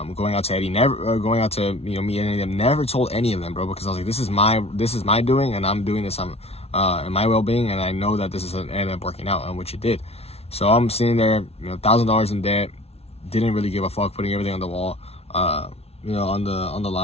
out to Eddie, going out to, me and any of them, never told any of them, bro, because I was like, this is my doing, and I'm doing this in my well-being, and I know that this is ended up working out, which it did. So I'm sitting there, $1,000 in debt, didn't really give a fuck, putting everything on the wall, on the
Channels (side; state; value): right; late; 0.30 ms